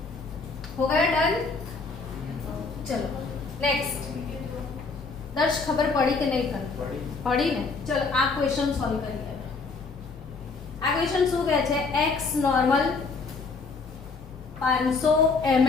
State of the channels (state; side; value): quieter; right; 4.3 dB